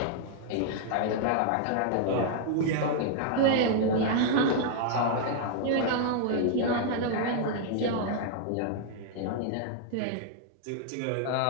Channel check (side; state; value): both; different; correlation -0.01